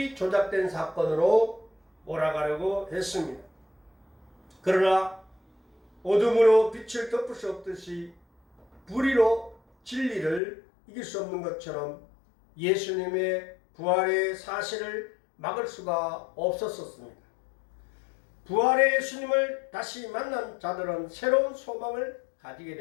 조작된 사건으로 몰아가려고 했습니다. 그러나 어둠으로 빛을 덮을 수 없듯이 불의로 진리를 이길 수 없는 것처럼 예수님의 부활의 사실을 막을 수가 없었습니다. 부활의 예수님을 다시 만난 자들은 새로운 소망을 가지게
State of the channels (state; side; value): drops out; right; at 10.4 s